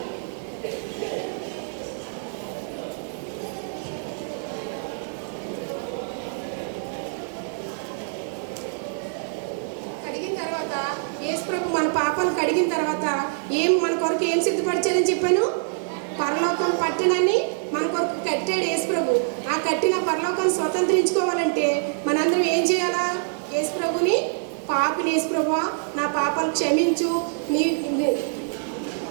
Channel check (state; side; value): silent; left; digital silence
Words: అడిగిన తర్వాత యేసు ప్రభు మన పాపాలు కడిగిన తర్వాత మన కొరకు ఏం సిద్ధపరిచారని చెప్పాను? పరలోకం పట్టణాన్ని మన కొరకు కట్టాడు యేసు ప్రభు. ఆ కట్టిన పరలోకాన్ని స్వతంత్రించుకోవాలంటే మనందరం ఏం చేయాలా? యేసు ప్రభుని, పాపిని యేసు ప్రభువా నా పాపాలు క్షమించు,